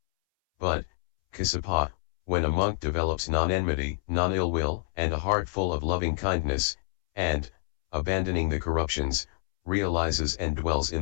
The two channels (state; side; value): silent; right; 60 dB below the other